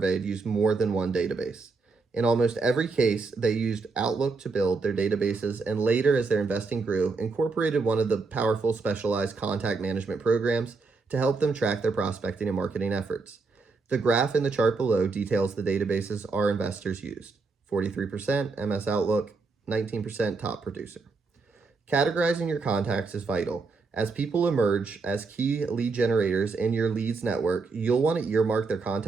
used more than one database. In almost every case, they used Outlook to build their databases and later, as their investing grew, incorporated one of the powerful specialized contact management programs to help them track their prospecting and marketing efforts. The graph in the chart below details the databases our investors used. 43% MS Outlook, 19% Top Producer. Categorizing your contacts is vital. As people emerge as key lead generators in your leads network, you'll want to earmark their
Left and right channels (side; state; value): left; quieter; 4.2 dB